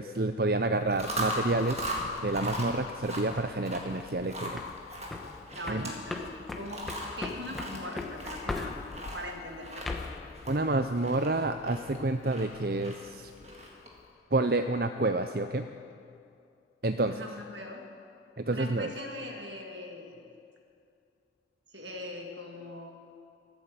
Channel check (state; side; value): normal; both; correlation 0.21